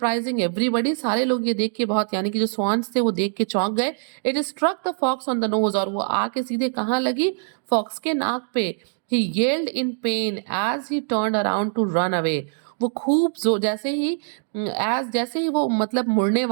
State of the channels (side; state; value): left; silent; digital silence